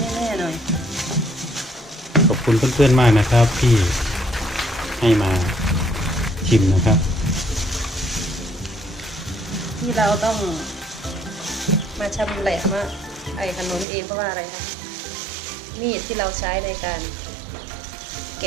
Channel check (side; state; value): left; drops out; at 13.9 s